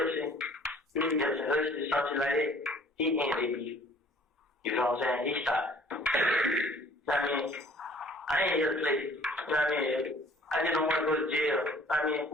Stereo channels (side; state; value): both; normal; correlation 0.54